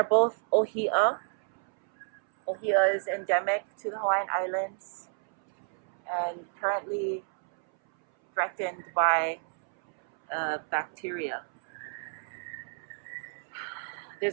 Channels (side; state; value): left; silent; 58 dB below the other